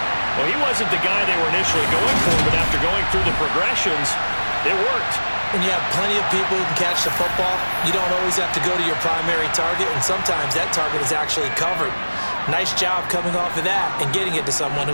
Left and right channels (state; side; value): inverted; both; correlation -1.00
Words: Well, he wasn't the guy they were initially going for, but after going through the progressions, it worked. When you have plenty of people who can catch the football, you don't always have to go to your primary target, and sometimes that target is actually covered. Nice job coming off of that and getting it to someone